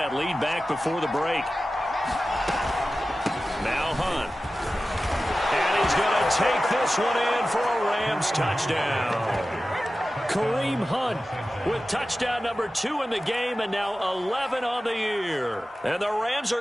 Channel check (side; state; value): both; normal; correlation 0.95